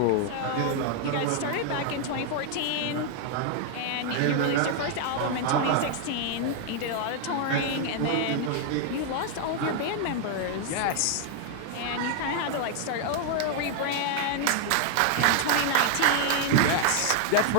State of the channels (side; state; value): both; different; correlation 0.00